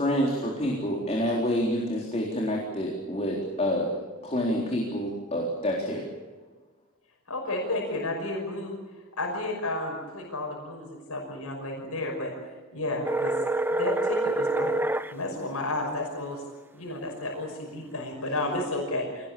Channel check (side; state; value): both; normal; correlation 0.32